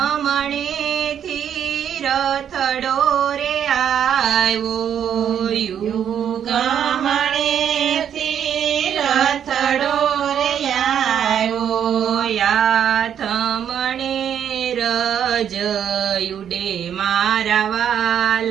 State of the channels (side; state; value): left; quieter; 9.0 dB